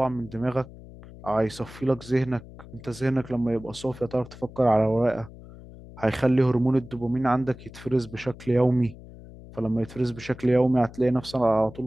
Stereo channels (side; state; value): left; noise; hum, 17 dB below the sound